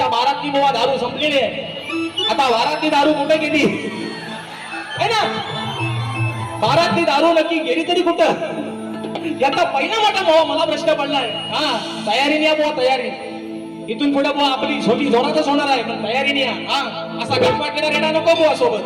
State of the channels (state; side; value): identical; both; correlation 1.00